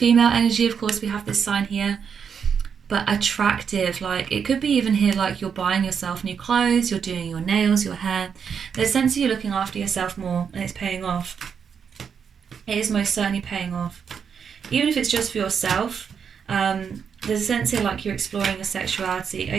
energy, of course, we have this sign here. But attractive, like it could be even here like you're buying yourself new clothes, you're doing your nails, your hair. There's a sense of you looking after yourself more and it's paying off. It is most certainly paying off. Even if it's just for yourself, there's a sense here like you're exploring your sexuality.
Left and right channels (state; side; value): quieter; left; 6.9 dB